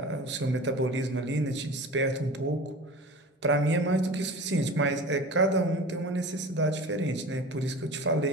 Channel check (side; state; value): both; normal; correlation 0.36